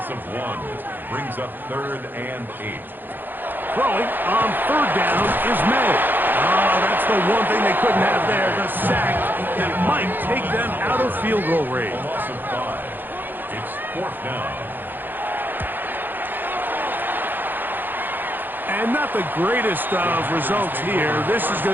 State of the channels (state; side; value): late; left; 0.091 ms